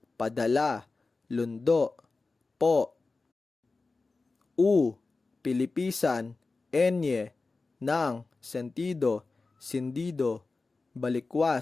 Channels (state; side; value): quieter; right; 3.7 dB